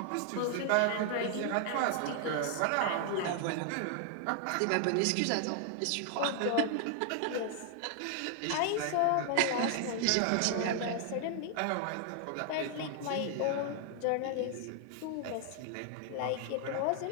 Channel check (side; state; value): both; different; correlation 0.00